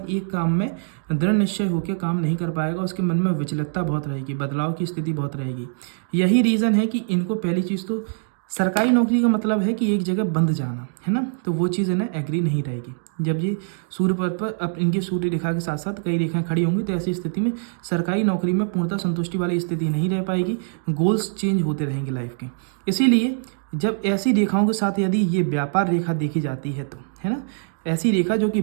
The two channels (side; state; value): left; silent; digital silence